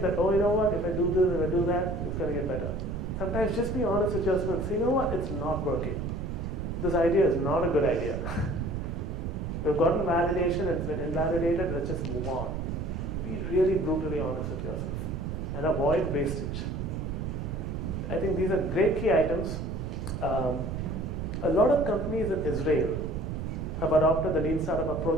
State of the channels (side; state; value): right; noise; rumble, 4 dB below the sound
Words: that, oh, you know what, if I do this, if I do that, it's going to get better. Sometimes just be honest with yourself and say, you know what, it's not working. This idea is not a good idea. We've gotten validation, it's been invalidated, let's just move on. Be really brutally honest with yourself and avoid wastage. I think these are great key items. A lot of companies in Israel have adopted the lean startup